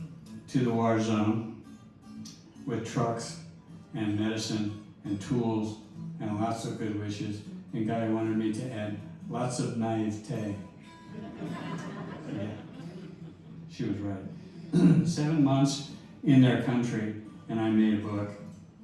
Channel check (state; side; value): identical; both; correlation 1.00